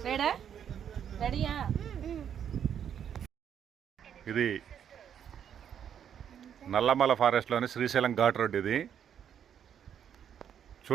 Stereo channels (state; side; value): quieter; left; 8.8 dB